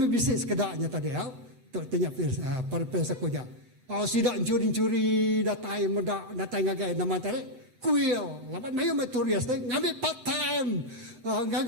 sekedarnya tadi ya. Tok tanya para peserta kerja. Sidak curi-curi datai medak datai ngagai nama tadi. Kuil. Lapan mayu maturias tadi ngambil part time.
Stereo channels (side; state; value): left; late; 8.3 ms